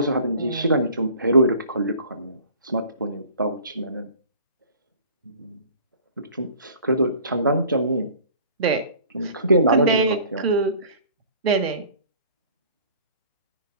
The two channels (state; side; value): inverted; both; correlation -0.48